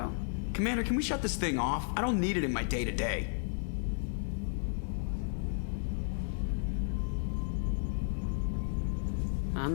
Commander, can we shut this thing off? I don't need it in my day-to-day.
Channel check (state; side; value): silent; right; 56 dB below the other